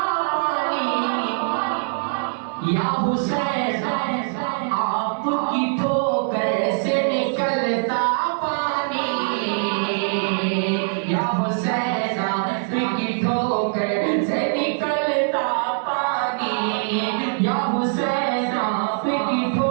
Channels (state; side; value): silent; left; digital silence